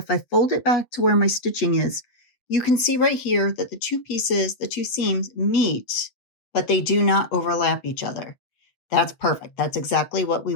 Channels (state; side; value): late; right; 8.3 ms